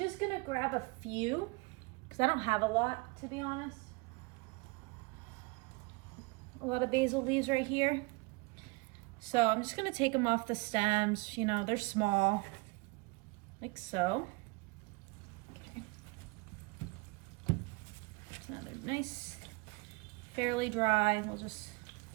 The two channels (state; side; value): quieter; left; 26.3 dB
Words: gonna grab a few because I don't have a lot, to be honest. A lot of basil leaves right here. So I'm just gonna take them off the stems. They're small, like so. Okay. So they're nice, fairly dry. We'll just